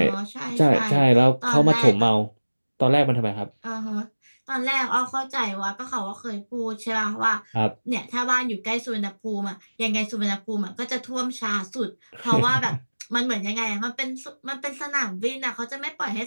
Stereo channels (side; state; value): both; inverted; correlation -1.00